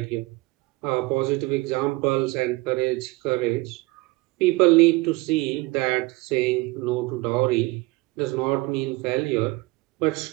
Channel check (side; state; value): left; quieter; 22.3 dB